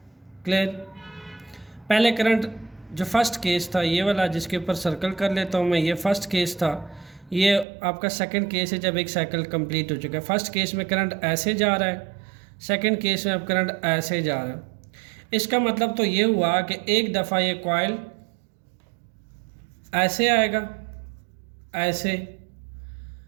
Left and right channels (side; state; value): left; drops out; at 7.7 s